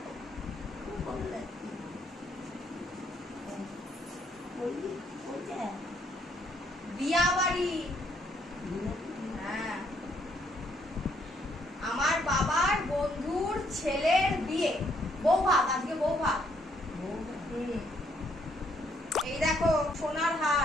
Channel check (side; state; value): both; normal; correlation 0.70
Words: বিয়া বাড়ি। হ্যাঁ, আমার বাবার বন্ধুর ছেলের বিয়ে। বউ ভাত, আজকে বউ ভাত। এই দেখো সোনার